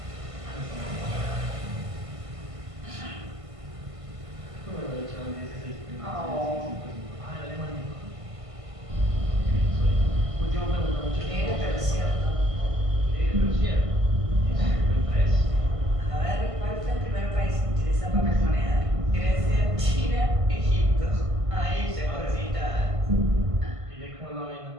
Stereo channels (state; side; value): late; left; 1.5 ms